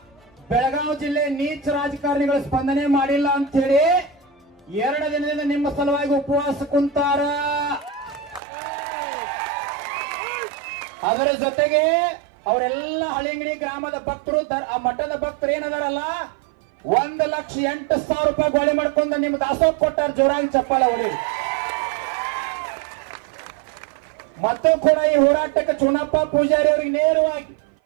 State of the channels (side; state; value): left; drops out; at 8.4 s